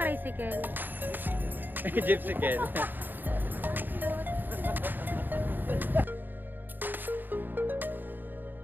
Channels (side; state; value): left; late; 0.091 ms